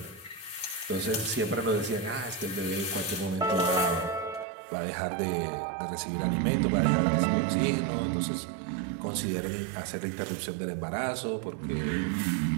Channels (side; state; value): left; drops out; at 4.5 s